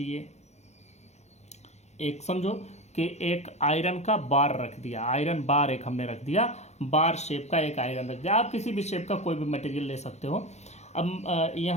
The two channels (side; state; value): right; late; 0.32 ms